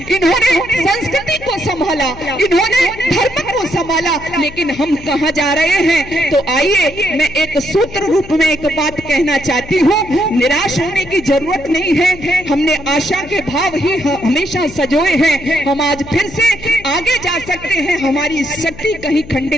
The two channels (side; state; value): left; noise; hum, 17 dB below the sound